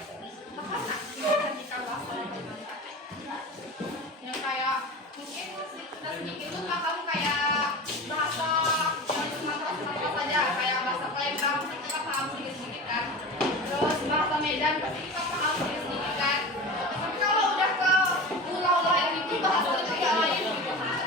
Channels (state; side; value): normal; both; correlation 0.31